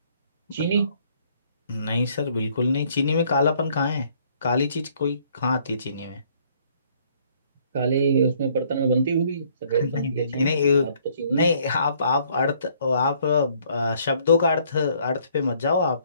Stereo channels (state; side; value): inverted; both; correlation -0.63